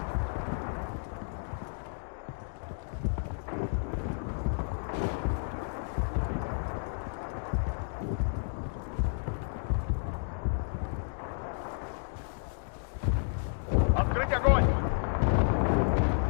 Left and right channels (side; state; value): right; silent; digital silence